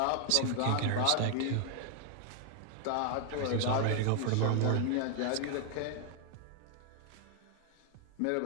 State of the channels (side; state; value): both; different; correlation 0.00